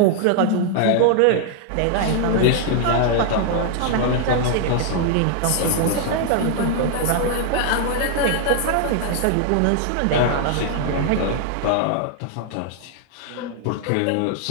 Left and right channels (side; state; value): both; different; correlation 0.00